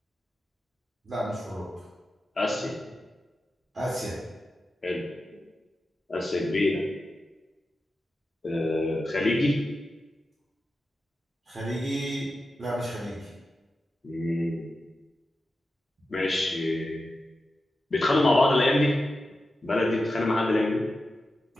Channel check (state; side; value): normal; both; correlation 0.91